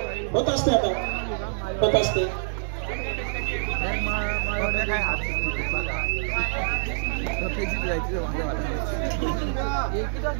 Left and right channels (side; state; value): left; silent; digital silence